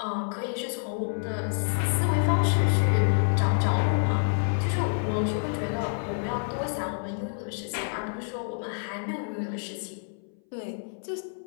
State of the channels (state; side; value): silent; right; 59 dB below the other